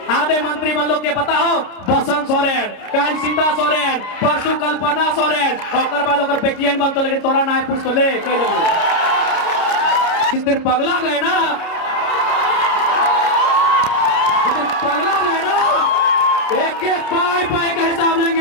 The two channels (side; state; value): right; late; 29 ms